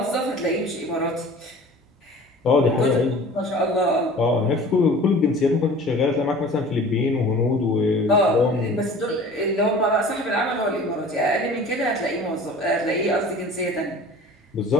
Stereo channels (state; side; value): normal; both; correlation 0.43